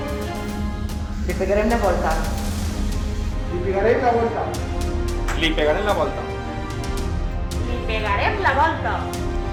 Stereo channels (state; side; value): identical; both; correlation 1.00